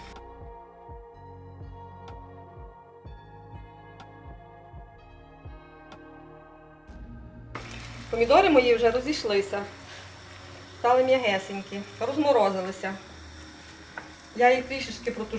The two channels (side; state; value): both; identical; correlation 1.00